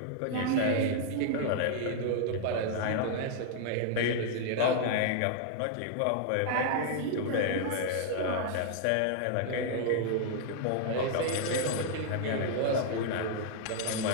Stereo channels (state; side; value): different; both; correlation -0.01